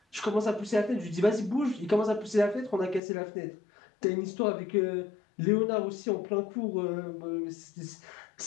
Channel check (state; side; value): drops out; right; at 3.0 s